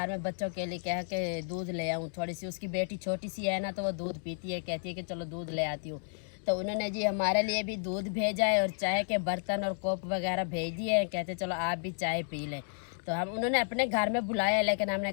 में बच्चों के लिए कह के दूध ले आऊँ थोड़ी सी। उसकी बेटी छोटी सी है ना तो वो दूध पीती है, कहती है कि चलो दूध ले आती हूँ। तो उन्होंने जी हमारे लिए भी दूध भेजा है और चाय के बर्तन और कोप वगैरह भेज दिए हैं, कहते चलो आप भी चाय पी लें। तो हम उन्होंने अपने घर में बुलाया लेकिन हमने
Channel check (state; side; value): silent; right; digital silence